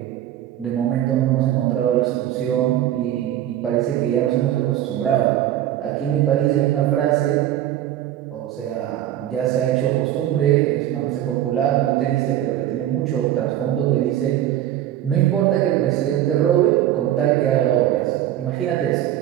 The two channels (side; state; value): left; quieter; 12.3 dB